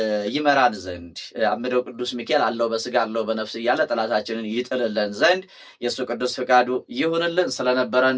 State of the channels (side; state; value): both; identical; correlation 1.00